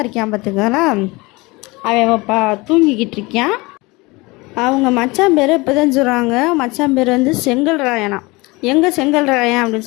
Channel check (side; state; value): right; quieter; 23.9 dB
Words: இருக்கான் பார்த்துக்கங்களா, அவன் தூங்கிக்கிட்டு இருக்கான். அவங்க மச்சான் பேர் இப்போ தான் சொல்கிறாங்க, மச்சான் பேர் செங்கல் ராயனா. எங்கே செங்கல் ராயன் அப்படின்னு